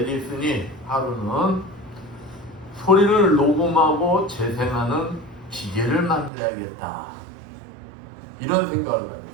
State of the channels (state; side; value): drops out; left; at 6.3 s